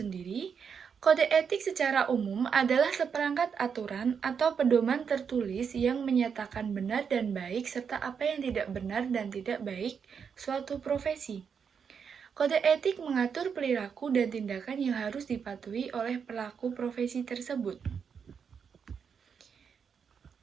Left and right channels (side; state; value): left; quieter; 6.7 dB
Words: Kode etik secara umum adalah seperangkat aturan atau pedoman tertulis yang menyatakan benar dan baik serta apa yang tidak benar dan tidak baik suatu profesi. Kode etik mengatur perilaku dan tindakan yang harus dipatuhi oleh pelaku profesi tersebut.